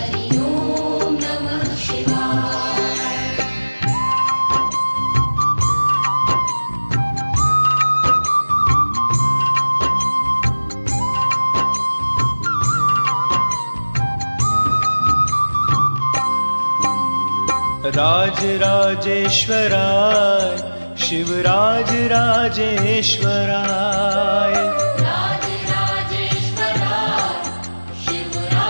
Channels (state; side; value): inverted; both; correlation -1.00